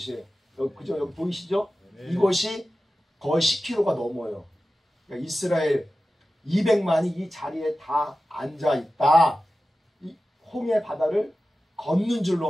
그죠? 여기 보이시죠? 네. 이곳이 거의 10km가 넘어요. 그러니까 이스라엘 200만이 이 자리에 다 앉아 있다. 이 홍해 바다를 걷는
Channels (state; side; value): normal; both; correlation 0.94